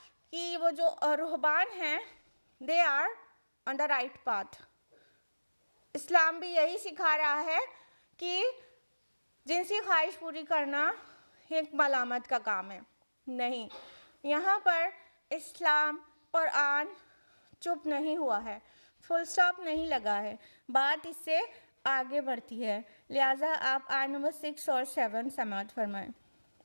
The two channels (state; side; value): inverted; both; correlation -1.00